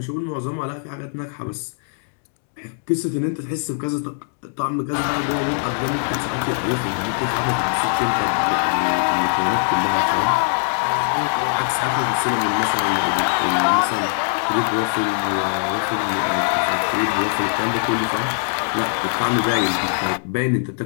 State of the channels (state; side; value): silent; right; digital silence